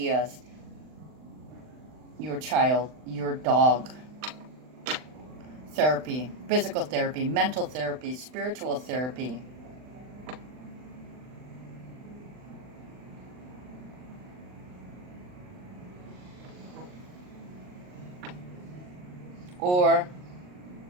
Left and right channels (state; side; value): late; left; 39 ms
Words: your child, your dog. Therapy, physical therapy, mental therapy, spiritual therapy. Or